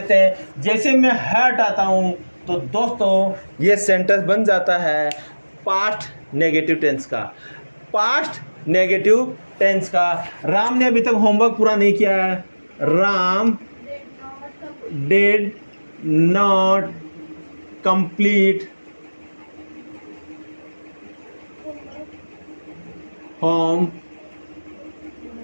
हैं। जैसे मैं हटाता हूं तो दोस्तों ये सेंटेंस बन जाता है पास्ट नेगेटिव टेंस का। पास्ट नेगेटिव टेंस का। राम ने अभी तक होमवर्क पूरा नहीं किया है। Ram did not complete होम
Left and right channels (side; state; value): both; inverted; correlation -1.00